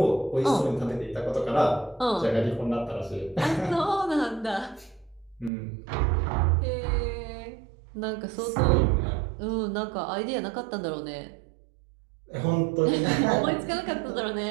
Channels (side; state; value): left; drops out; at 5.5 s